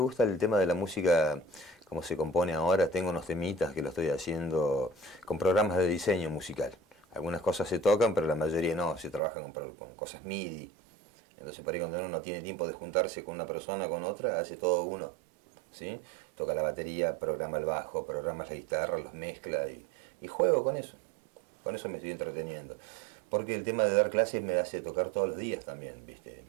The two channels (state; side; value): drops out; left; at 9.2 s